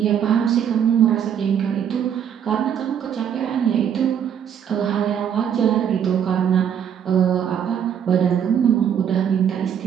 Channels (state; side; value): quieter; left; 8.6 dB